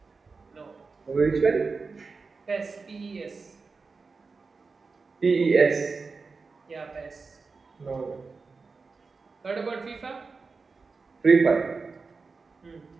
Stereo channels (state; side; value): quieter; left; 4.4 dB